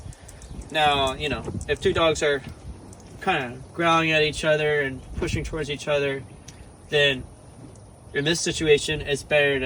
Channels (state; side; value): identical; both; correlation 1.00